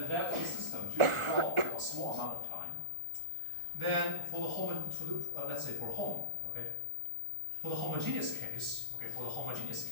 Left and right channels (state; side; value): late; left; 1.4 ms